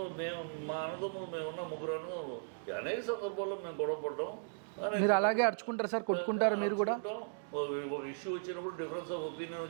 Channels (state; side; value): silent; left; digital silence